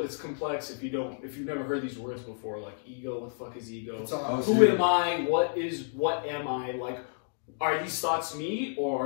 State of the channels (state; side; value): silent; right; digital silence